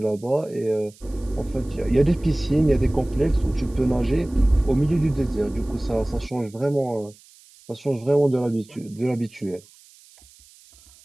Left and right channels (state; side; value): noise; right; hiss, 26 dB below the sound